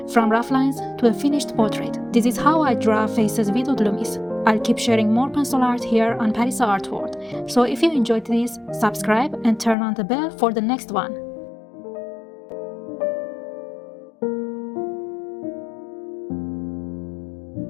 from rough lines to a finished portrait. This is how I draw faces with Loomis. I'll keep sharing more pencil art here on Parisa Art World. So if you enjoyed this, subscribe and turn on the bell for the next one.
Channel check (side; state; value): right; drops out; at 9.8 s